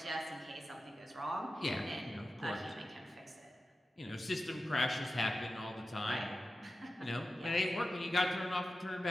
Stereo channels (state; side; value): normal; both; correlation 0.94